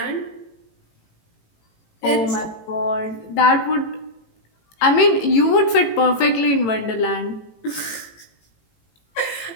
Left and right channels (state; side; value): late; right; 18 ms